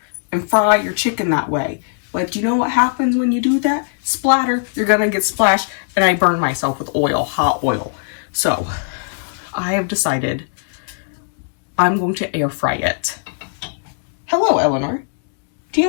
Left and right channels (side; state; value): right; silent; digital silence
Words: and fry your chicken that way. But you know what happens when you do that? Splatter, you're going to get splashed, and I burn myself with oil, hot oil. So, I have decided I'm going to air fry it. Hello, Eleanor. Do